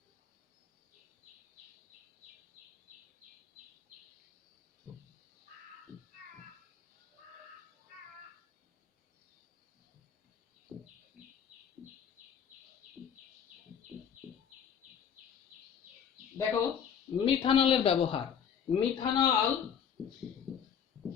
দেখো মিথানলের ব্যবহার। মিথানল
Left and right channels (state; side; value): quieter; right; 7.8 dB